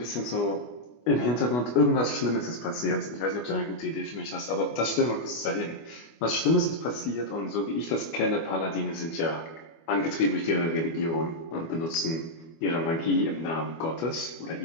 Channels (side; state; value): right; late; 25 ms